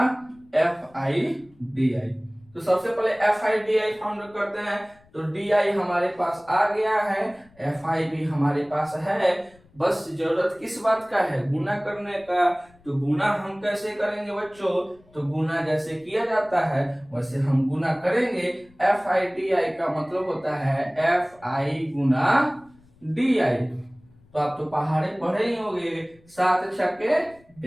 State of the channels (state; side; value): noise; left; rumble, 29 dB below the sound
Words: F I D I. तो सबसे पहले F I D I found करते हैं। तो डी आई हमारे पास आ गया है, एफ आई भी हमारे पास है, बस जरूरत किस बात का है, गुना करने का। तो गुना हम कैसे करेंगे बच्चों, तो गुना जैसे किया जाता है वैसे हम गुना करेंगे। एफ आई डी आई का मतलब होता है F I Guna D I. तो आप तो पहाड़े पढ़े ही होंगे, 7 छक्के